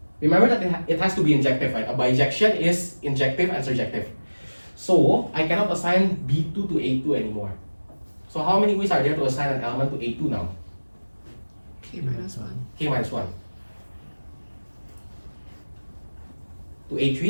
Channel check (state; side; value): inverted; both; correlation -1.00